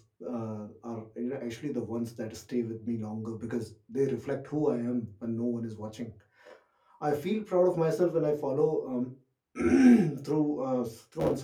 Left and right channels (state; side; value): identical; both; correlation 1.00